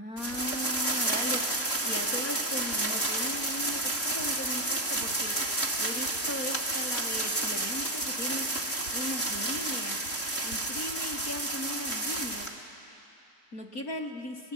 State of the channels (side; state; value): right; late; 3.6 ms